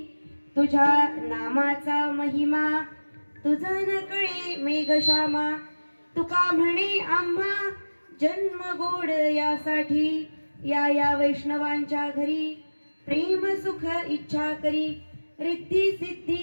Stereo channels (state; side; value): inverted; both; correlation -1.00